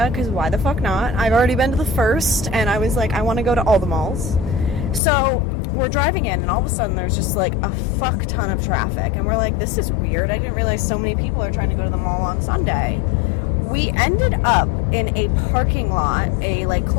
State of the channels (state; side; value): drops out; right; at 5.0 s